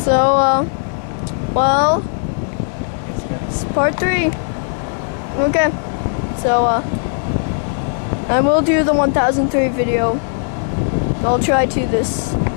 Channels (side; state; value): right; silent; digital silence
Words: well, it's part 3. Okay, so, I will do the 1003 video. I'll try to this